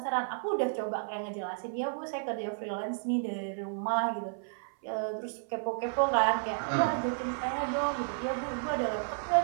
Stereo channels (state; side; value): silent; left; 56 dB below the other